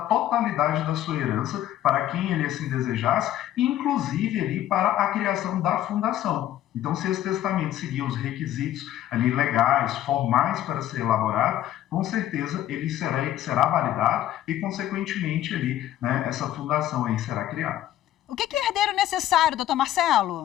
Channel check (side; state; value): right; quieter; 12.6 dB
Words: totalidade da sua herança para quem ele assim desejasse, inclusive ali para a criação da fundação. Então, se esse testamento seguir os requisitos ali legais, formais para ser elaborado, com certeza ele será validado e, consequentemente, ali, né, essa fundação aí será criada. O que é herdeiro necessário, doutor